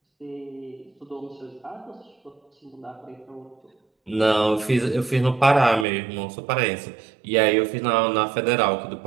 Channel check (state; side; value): drops out; left; at 5.9 s